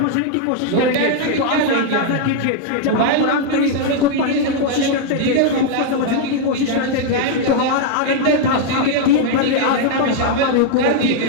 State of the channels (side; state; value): both; different; correlation 0.00